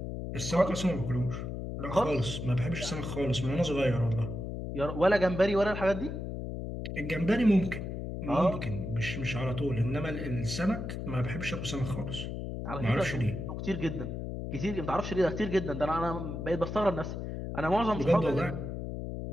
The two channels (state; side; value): noise; left; hum, 5 dB below the sound